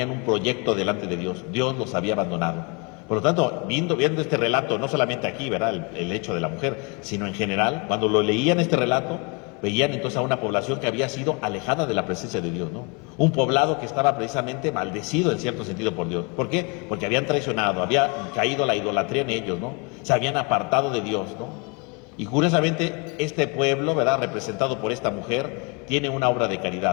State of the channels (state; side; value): quieter; right; 31.4 dB